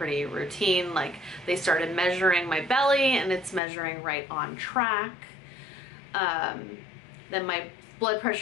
routine. Like they started measuring my belly, and it's measuring right on track. Then my blood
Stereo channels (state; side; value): drops out; right; at 3.6 s